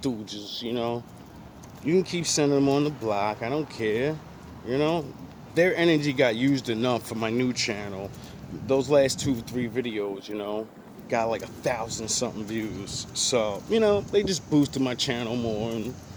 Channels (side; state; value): both; identical; correlation 1.00